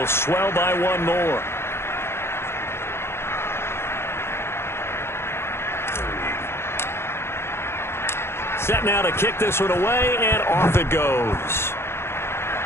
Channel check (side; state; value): right; late; 0.12 ms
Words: swell by one more. Set now to kick this one away, and off it goes.